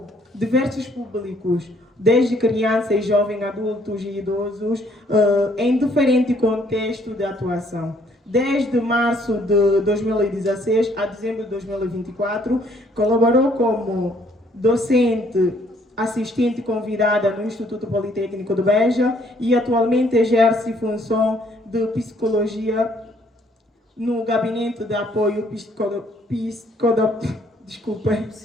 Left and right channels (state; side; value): normal; both; correlation 0.65